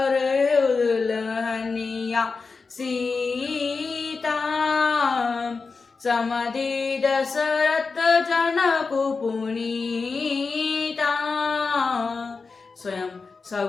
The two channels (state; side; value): quieter; right; 4.5 dB